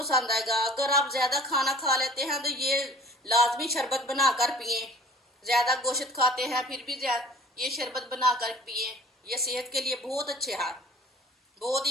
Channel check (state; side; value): normal; both; correlation 0.47